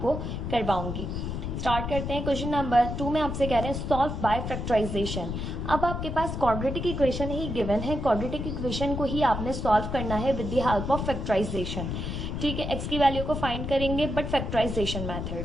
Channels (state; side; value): noise; left; rumble, 4 dB below the sound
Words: करवाऊंगी। स्टार्ट करते हैं। क्वेश्चन नंबर 2 में आपसे कह रहे हैं सॉल्व बाय फैक्टराइजेशन। अब आपके पास क्वाड्रेटिक इक्वेशन ही गिवन है, क्वाड्रेटिक इक्वेशन को ही आपने सॉल्व करना है with the help of factorization. ठीक है, एक्स की वैल्यू को फाइंड करेंगे बट फैक्टराइजेशन मेथड